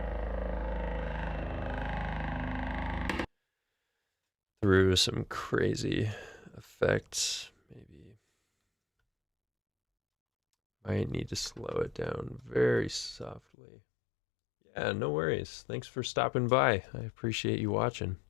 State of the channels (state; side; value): drops out; right; at 13.4 s